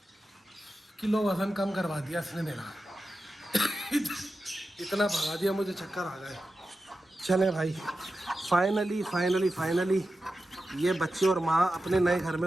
किलो वजन कम करवा दिया इसने मेरा। इतना भगा दिया मुझे चक्कर आ गए। चले भाई, फाइनली ये बच्चे और माँ अपने नए घर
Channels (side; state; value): both; normal; correlation 0.92